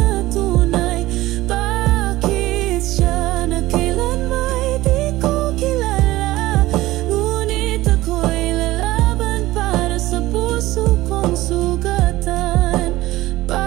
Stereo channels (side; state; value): left; quieter; 17.5 dB